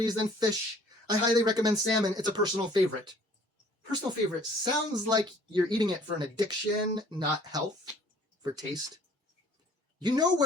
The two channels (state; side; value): normal; both; correlation 0.55